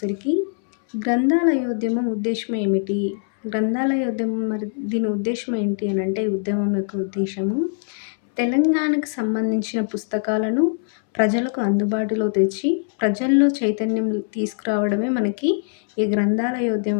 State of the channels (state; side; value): silent; right; 64 dB below the other